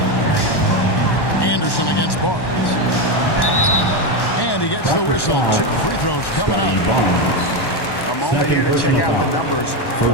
Anderson against Barnes. And he gets the whistle. 2 free throws coming up. A moment here to check out the numbers for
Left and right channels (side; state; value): right; late; 1.1 ms